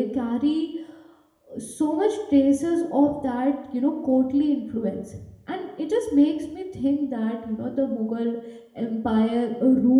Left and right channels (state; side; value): identical; both; correlation 1.00